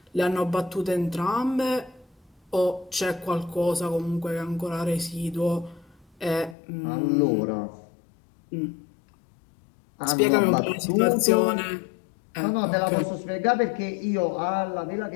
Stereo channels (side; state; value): right; drops out; at 6.6 s